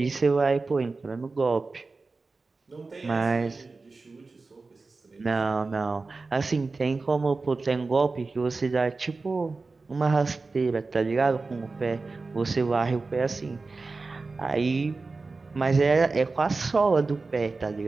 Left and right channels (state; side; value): quieter; left; 3.8 dB